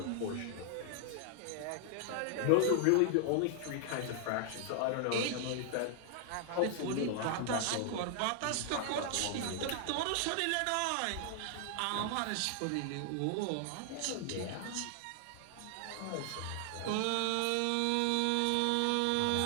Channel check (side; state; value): both; different; correlation 0.00